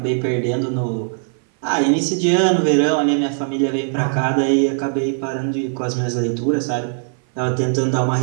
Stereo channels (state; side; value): silent; left; 57 dB below the other